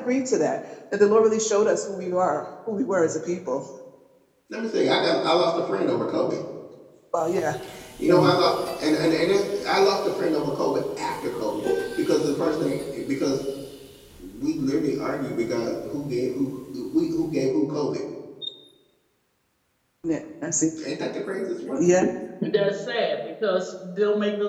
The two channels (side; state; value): both; identical; correlation 1.00